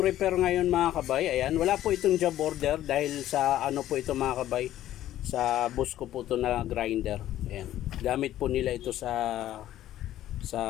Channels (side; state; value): right; quieter; 13.1 dB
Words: repair ngayon mga kabay. Ayan, wala po itong job order dahil sa ano po ito mga kabay. Sa bus ko po ito na grinder. Ayan. Gamit po nila ito sa